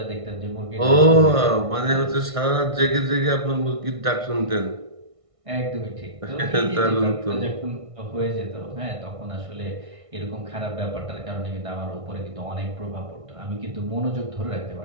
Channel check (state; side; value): late; left; 1.6 ms